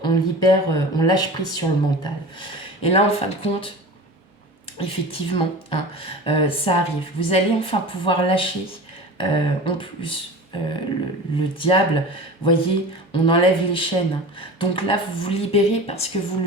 on lâche prise sur le mental. Et là, en fin de compte, effectivement, hein, ça arrive. Vous allez enfin pouvoir lâcher, en plus, le diable, voyez, on enlève les chaînes. Donc là, vous vous libérez parce que vous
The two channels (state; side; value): normal; both; correlation 0.35